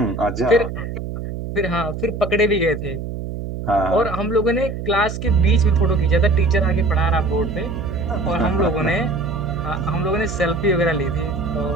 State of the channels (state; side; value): noise; right; hum, 6 dB below the sound